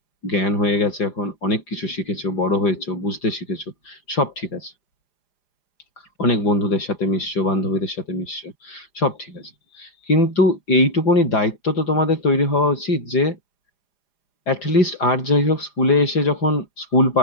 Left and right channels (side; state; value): right; late; 4.9 ms